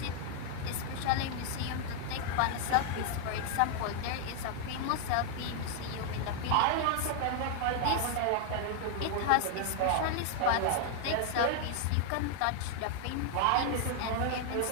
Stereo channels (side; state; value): both; different; correlation 0.00